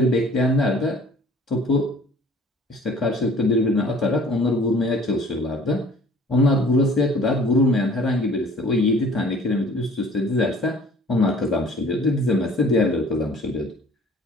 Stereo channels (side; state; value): both; normal; correlation 0.51